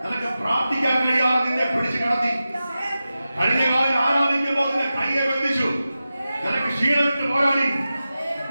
നിനക്ക് പ്രാർത്ഥിക്കാൻ കഴിയാതെ നിന്നെ പിടിച്ചു കിടത്തി. കഴിഞ്ഞ കാലം ആരാധിക്കുമ്പോൾ നിന്നെ കയ്യെ ബന്ധിച്ചു. നിനക്ക് ക്ഷീണമിട്ട് പോരാടി.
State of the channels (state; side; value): inverted; both; correlation -0.93